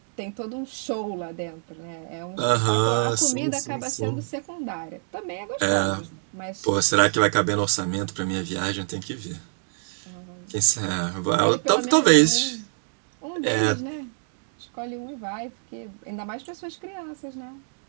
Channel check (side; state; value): left; silent; digital silence